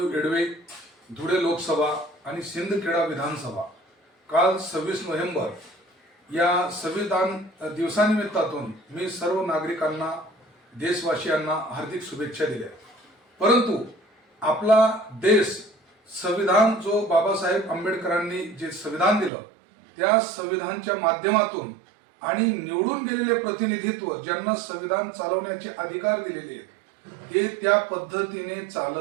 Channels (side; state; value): left; drops out; at 19.3 s